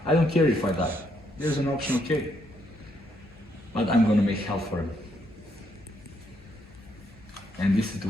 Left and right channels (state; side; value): normal; both; correlation 0.75